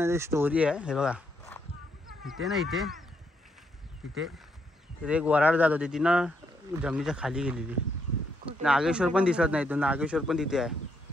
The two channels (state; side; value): normal; both; correlation 0.76